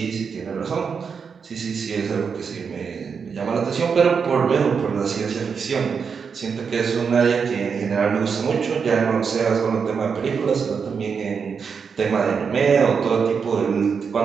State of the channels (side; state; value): left; quieter; 6.0 dB